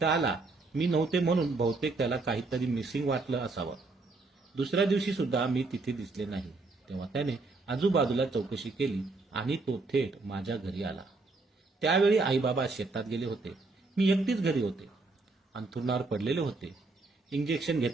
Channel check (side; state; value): left; quieter; 3.6 dB